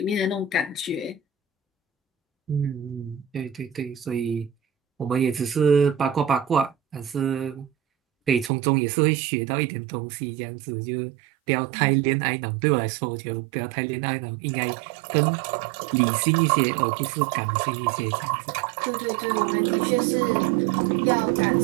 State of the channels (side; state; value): left; drops out; at 8.5 s